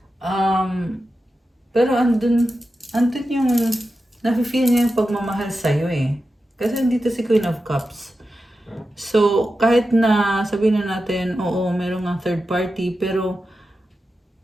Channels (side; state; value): both; normal; correlation 0.91